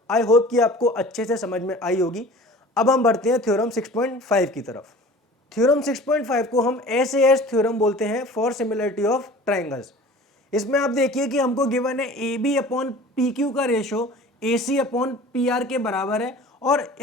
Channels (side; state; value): both; normal; correlation 0.43